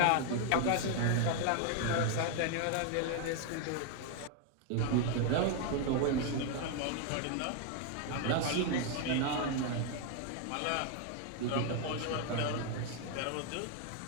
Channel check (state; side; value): different; both; correlation 0.00